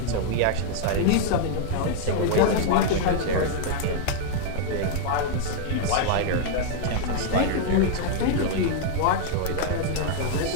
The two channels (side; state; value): both; different; correlation 0.00